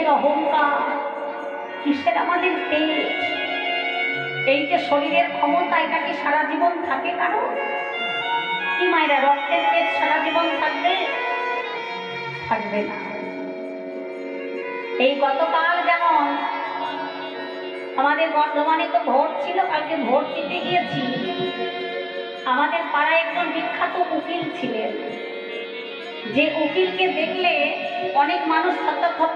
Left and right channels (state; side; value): identical; both; correlation 1.00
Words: অহংকার, কিসের আমাদের তেজ? এই যে শরীরের ক্ষমতা, এটা কি সারা জীবন থাকে কারো? কি মায়েরা, রক্তের তেজ সারা জীবন থাকবে? থাকবে না। এই গতকাল যেমন আমাদের বর্ধমানে তো ভোট ছিল, কালকে ভোট দিতে গিয়েছি। আমাদের পাড়ায় একজন বিখ্যাত উকিল ছিলেন, যে উকিলকে দেখলে অনেক মানুষ থরথর